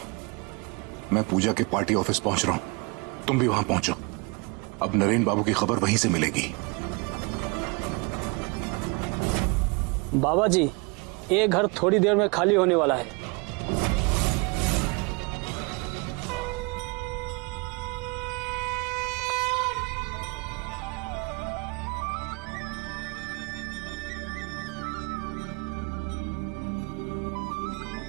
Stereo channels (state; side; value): quieter; left; 29.6 dB